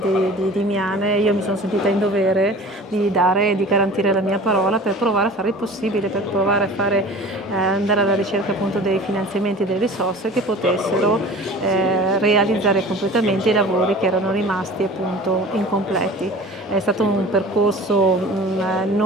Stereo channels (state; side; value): normal; both; correlation 0.41